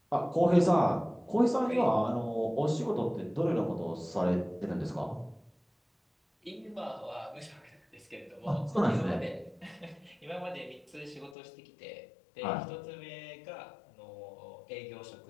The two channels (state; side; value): drops out; right; at 11.4 s